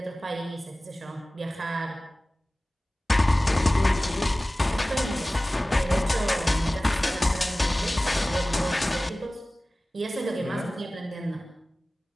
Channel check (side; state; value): both; normal; correlation 0.97